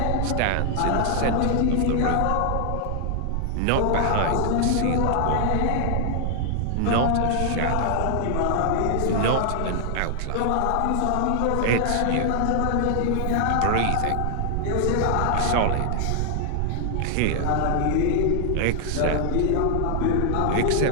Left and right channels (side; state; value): both; different; correlation 0.00